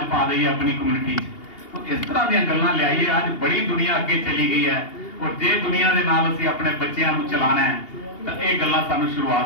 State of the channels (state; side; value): late; right; 2.8 ms